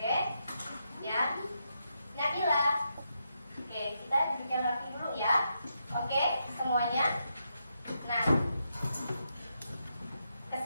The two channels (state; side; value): inverted; both; correlation -0.82